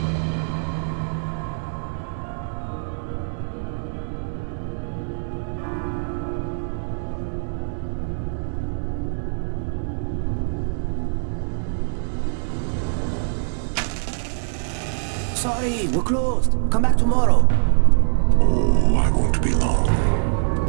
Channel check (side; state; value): left; silent; digital silence